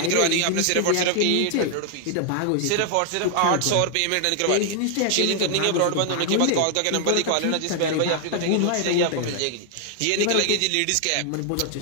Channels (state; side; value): different; both; correlation 0.00